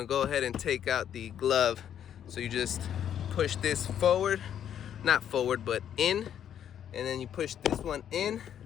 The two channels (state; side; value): quieter; right; 9.6 dB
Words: go ahead and take out the glove. So you just push this forward, not forward, but in, and then you push this one in,